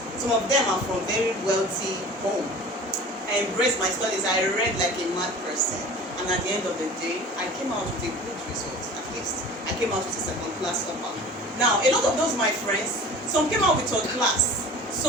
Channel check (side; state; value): both; normal; correlation 0.40